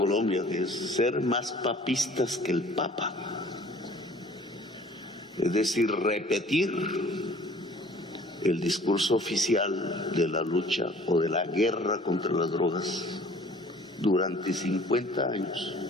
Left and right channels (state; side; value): normal; both; correlation 0.51